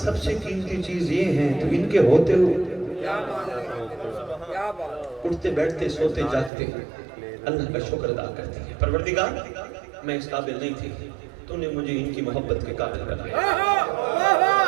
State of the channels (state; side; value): drops out; left; at 6.5 s